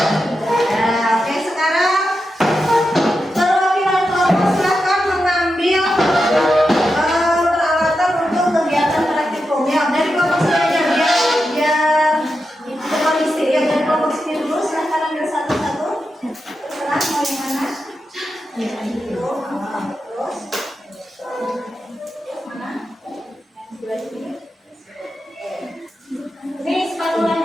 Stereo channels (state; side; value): normal; both; correlation 0.89